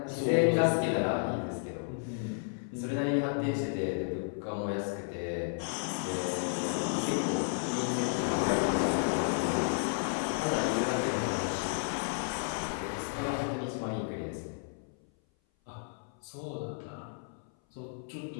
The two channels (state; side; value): silent; right; 56 dB below the other